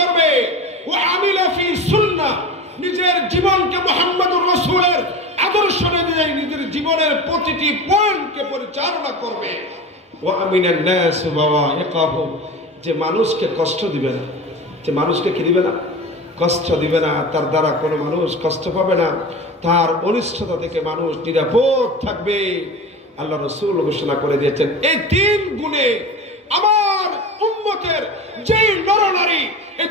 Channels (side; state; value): both; normal; correlation 0.31